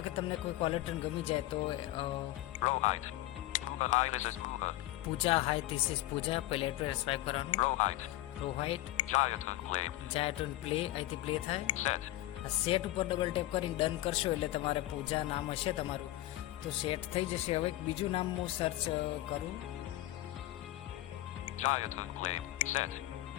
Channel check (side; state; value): right; quieter; 16.0 dB